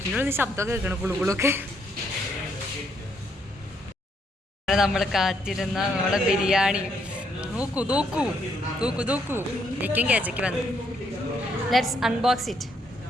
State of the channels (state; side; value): normal; both; correlation 0.73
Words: ശബ്ദമൊക്കെ കേൾക്കണം, കുളുകുളൊക്കെ. നമ്മൾ കാത്തിരുന്ന നമ്മളെ ബിരിയാണി നോക്കൂ. എനിക്കും കേച്ചയ്ക്ക് വന്നു. Let's unbox it.